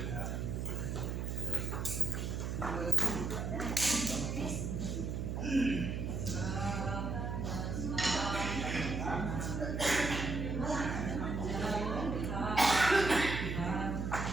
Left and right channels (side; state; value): right; noise; hum, 2 dB below the sound